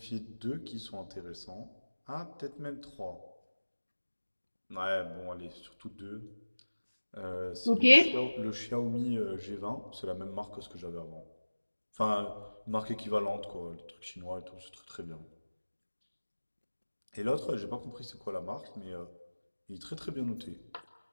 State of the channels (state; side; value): inverted; both; correlation -1.00